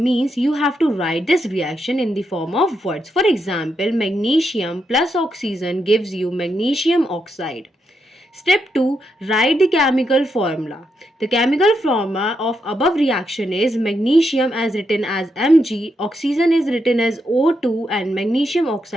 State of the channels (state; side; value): normal; both; correlation 0.82